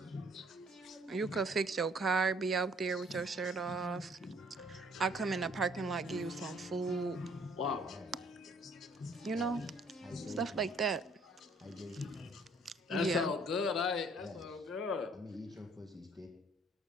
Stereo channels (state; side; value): normal; both; correlation 0.61